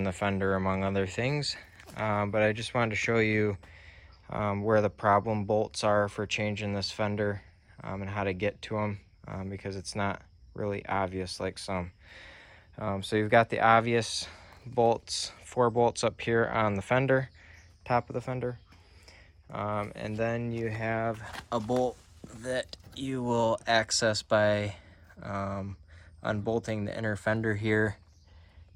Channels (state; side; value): identical; both; correlation 1.00